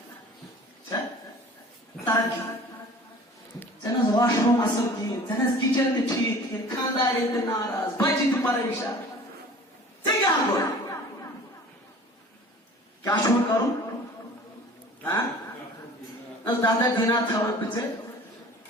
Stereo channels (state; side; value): normal; both; correlation 0.45